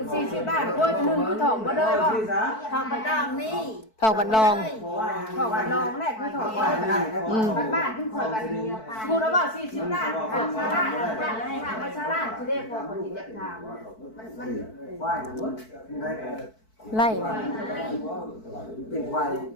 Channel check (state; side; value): late; right; 4.6 ms